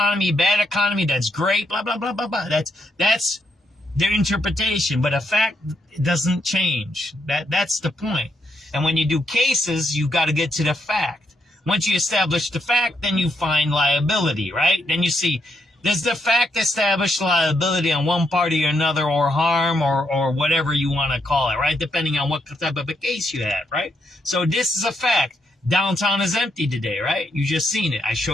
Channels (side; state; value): both; normal; correlation 0.78